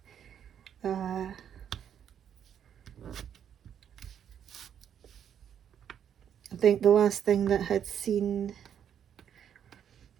I think the last thing that I'd seen,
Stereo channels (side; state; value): left; quieter; 9.0 dB